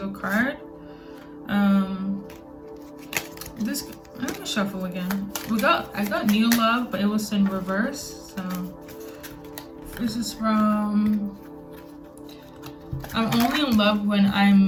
card. I'm gonna shuffle again. I got new love, but it was in reverse. So This is from, I'm only in love when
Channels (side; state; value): both; identical; correlation 1.00